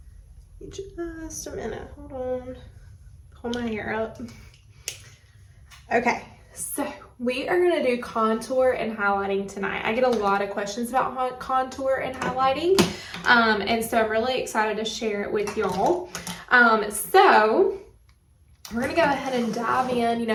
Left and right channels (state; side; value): identical; both; correlation 1.00